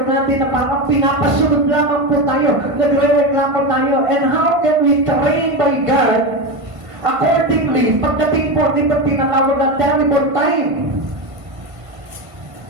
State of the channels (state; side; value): late; left; 1.5 ms